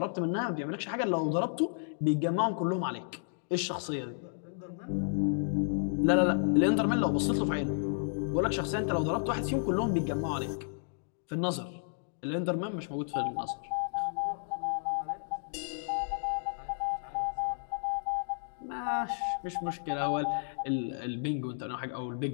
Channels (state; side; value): silent; right; digital silence